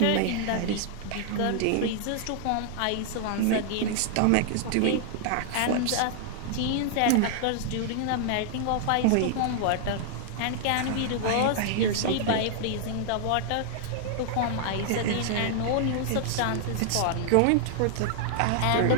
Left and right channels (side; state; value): both; different; correlation -0.01